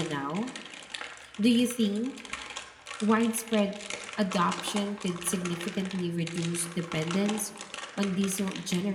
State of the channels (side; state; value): both; identical; correlation 1.00